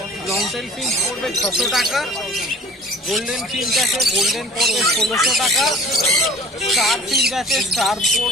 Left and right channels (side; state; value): both; normal; correlation 0.46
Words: লং টেল ফিঞ্চ পড়বে 600 টাকা। গোল্ডেন ফিঞ্চ আছে, গোল্ডেন পড়বে 1600 টাকা। স্টার ফিঞ্চ আছে, স্টার